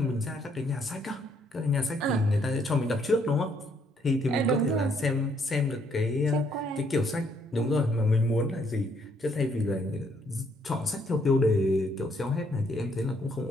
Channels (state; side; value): normal; both; correlation 0.69